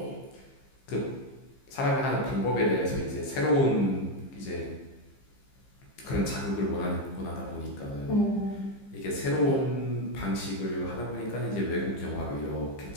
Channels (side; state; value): right; late; 15 ms